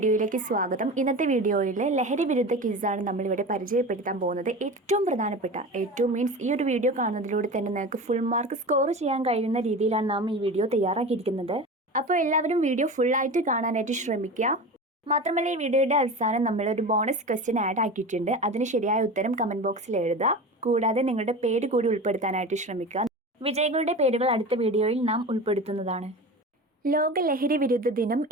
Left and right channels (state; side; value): normal; both; correlation 0.30